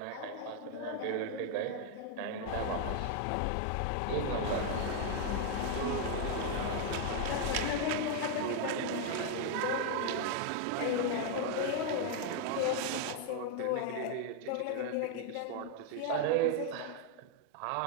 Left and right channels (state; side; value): different; both; correlation 0.00